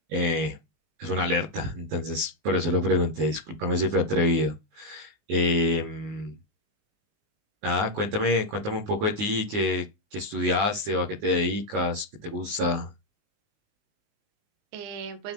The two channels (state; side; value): late; left; 19 ms